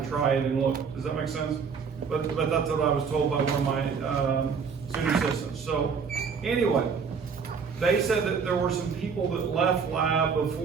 try it and look. Does that make sense? But that's what I was told by one of my student assistants. So anyway, they said that there were some people that left lab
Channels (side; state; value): left; quieter; 5.9 dB